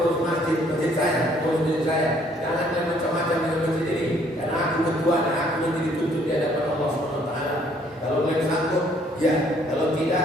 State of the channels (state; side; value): normal; both; correlation 0.63